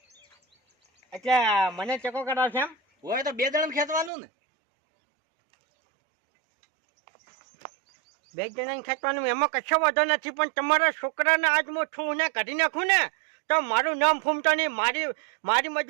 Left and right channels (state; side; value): drops out; left; at 4.1 s